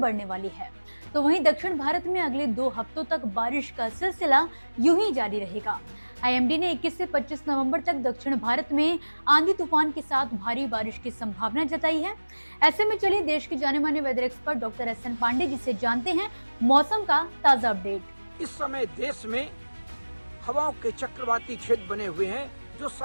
वाली है, तो वहीं दक्षिण भारत में अगले 2 हफ्तों तक बारिश का सिलसिला यूं ही जारी रहेगा। आईएमडी ने 21 से 25 नवंबर तक दक्षिण भारत में आंधी तूफान के साथ भारी बारिश की संभावना जताई है। ऐसे में चलिए देश के जाने माने weather expert doctor SN Pandey ji से जानते हैं मौसम का ताजा अपडेट। इस समय देश में हवाओं के चक्रवाती क्षेत्र बने हुए हैं जो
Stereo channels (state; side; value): inverted; both; correlation -1.00